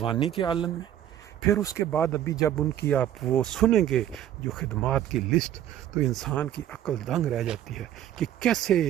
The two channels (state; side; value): quieter; left; 11.5 dB